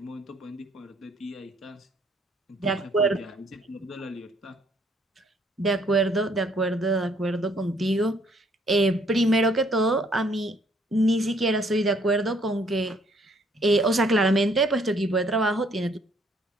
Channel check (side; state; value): both; normal; correlation 0.65